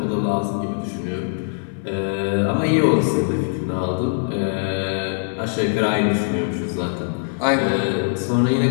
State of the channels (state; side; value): silent; right; 63 dB below the other